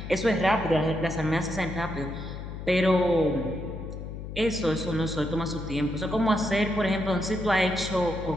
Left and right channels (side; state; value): left; noise; hum, 9 dB below the sound